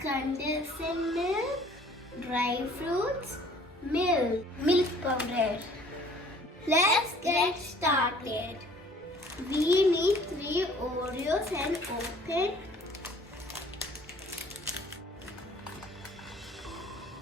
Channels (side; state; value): both; normal; correlation 0.54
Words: milk, dry fruits, milk powder. Let's get started. We need 3 Oreos and open